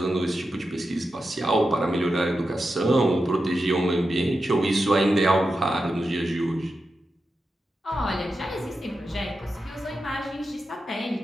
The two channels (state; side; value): normal; both; correlation 0.90